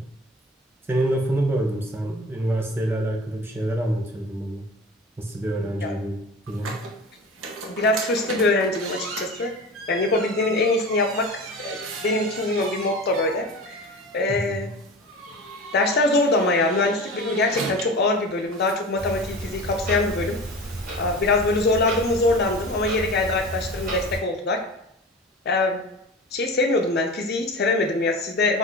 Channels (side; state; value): both; normal; correlation 0.33